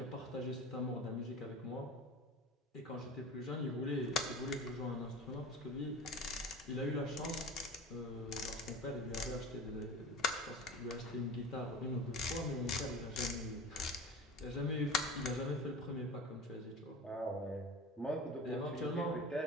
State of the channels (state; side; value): normal; both; correlation 0.35